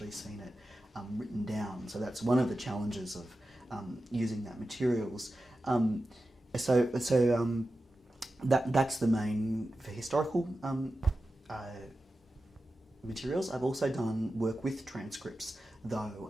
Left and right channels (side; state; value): both; normal; correlation 0.93